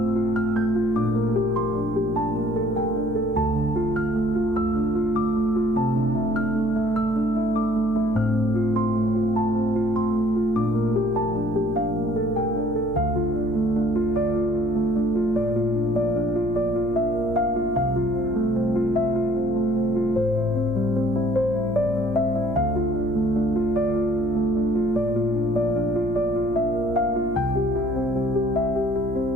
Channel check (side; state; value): left; noise; hum, 14 dB below the sound